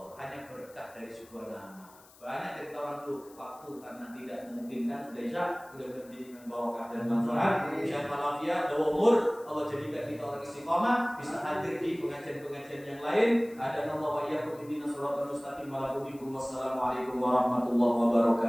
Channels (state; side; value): noise; left; hiss, 25 dB below the sound